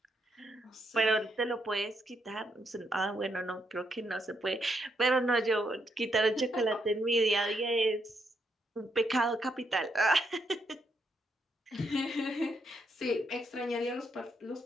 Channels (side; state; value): both; normal; correlation 0.78